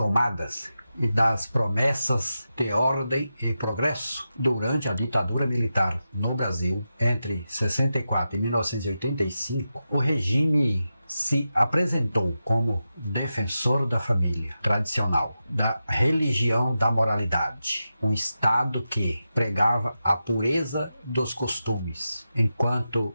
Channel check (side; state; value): both; inverted; correlation -0.90